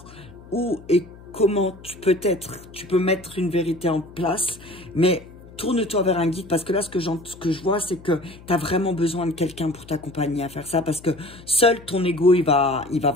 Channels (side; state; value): left; noise; hum, 20 dB below the sound